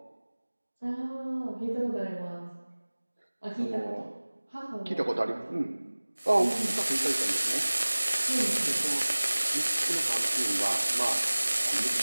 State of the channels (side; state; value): both; inverted; correlation -1.00